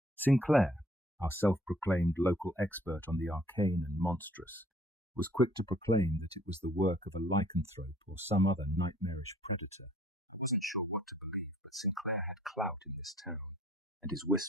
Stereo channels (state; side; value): normal; both; correlation 0.59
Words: Sinclair, our self-proclaimed local expert on the arcane and monstrous, was quick to proclaim that it was the work of a lycanthrope or some other nightmarish predator. I wasn't sure what to believe, but Sinclair had clout in this town, and his